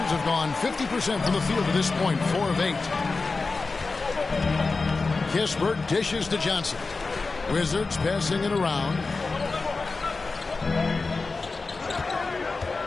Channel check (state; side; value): quieter; right; 3.9 dB